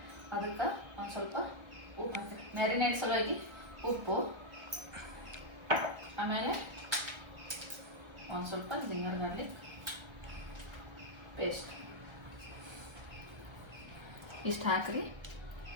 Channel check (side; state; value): left; late; 1.3 ms